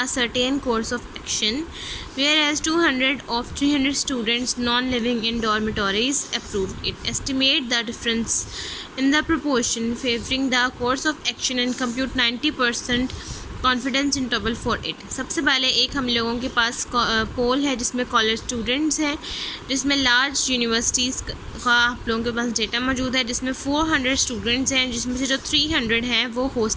certain course of action, whereas 200 of 300 students non-living in dormitories approved it. Estimate the difference in the proportion favoring the course of action and compute 90% confidence interval for it. सबसे पहले एक हम लोगों के पास पोल है जिसमें college students हैं, जिसमें लार्ज यूनिवर्सिटीज़ का आप लोगों के पास डेटा मौजूद है, जिसमें 400 स्टूडेंट्स हैं, जिसमें से जो 300 हैं वो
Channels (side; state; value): both; identical; correlation 1.00